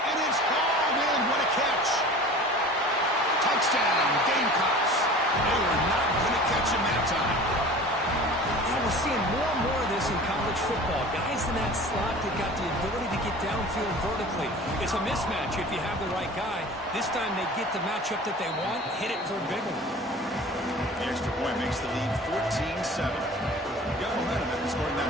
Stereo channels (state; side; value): normal; both; correlation 0.41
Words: And it's hauled in. What a catch. Touchdown, Gamecocks. They were not going to catch him that time. Yeah, we're seeing more and more of this in college football. Guys in that slot that got the ability to get downfield vertically. It's a mismatch if you have the right guy. This time they get the matchup that they want, hit it for a big one. The extra point makes the lead 14-7. Got momentum after scoring